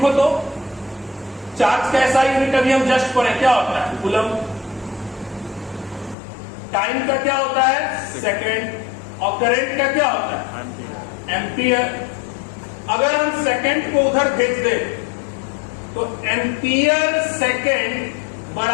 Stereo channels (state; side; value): drops out; right; at 6.2 s